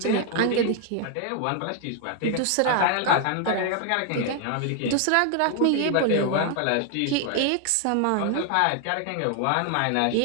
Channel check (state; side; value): different; both; correlation 0.00